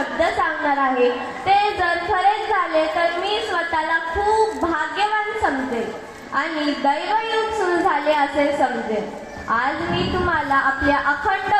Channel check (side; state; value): both; identical; correlation 1.00